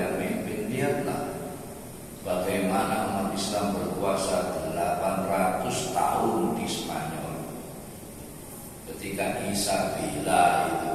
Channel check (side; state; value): both; identical; correlation 1.00